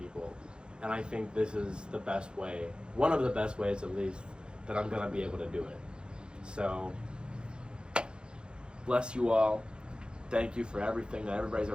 And I think this is the best way, one of the best ways at least, that I'm going to be able to do it. So, bless you all. Thank you for everything that everybody's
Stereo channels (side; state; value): left; late; 0.050 ms